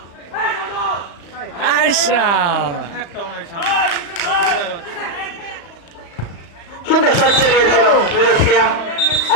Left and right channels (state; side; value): late; right; 35 ms